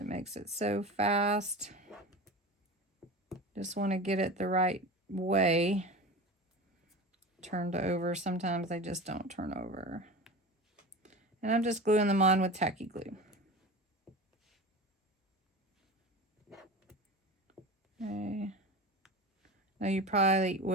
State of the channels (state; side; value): normal; both; correlation 0.30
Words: makes it so fast. Just want to get it the right way. Turned over. Sometimes they just don't turn over. And I'm just gluing them on with tacky glue. Okay. Now you probably